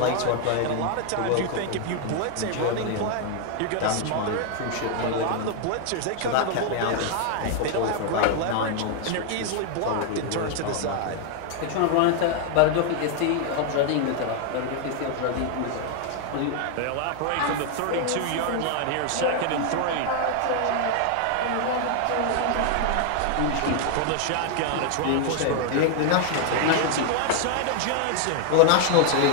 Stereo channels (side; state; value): both; different; correlation 0.00